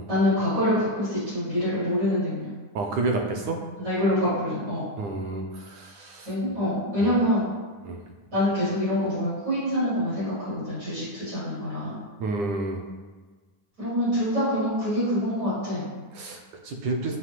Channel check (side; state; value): left; late; 10 ms